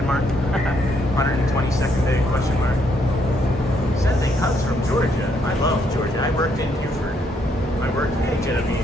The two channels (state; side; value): normal; both; correlation 0.73